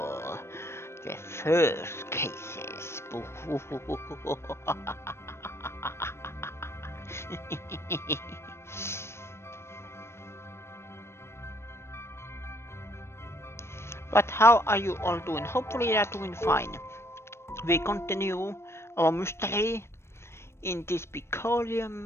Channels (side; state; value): right; late; 0.12 ms